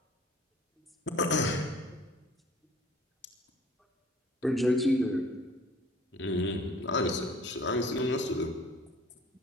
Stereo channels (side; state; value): both; normal; correlation 0.51